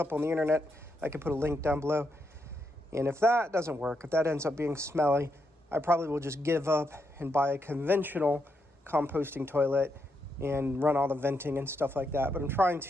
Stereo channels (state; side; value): normal; both; correlation 0.81